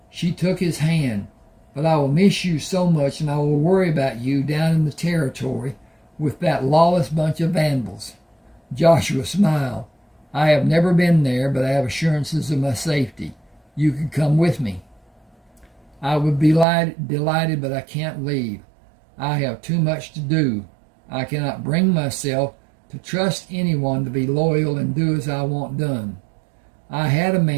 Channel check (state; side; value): drops out; left; at 16.7 s